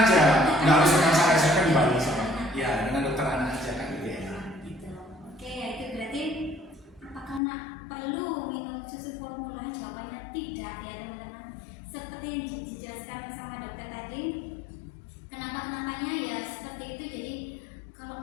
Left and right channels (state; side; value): drops out; right; at 7.4 s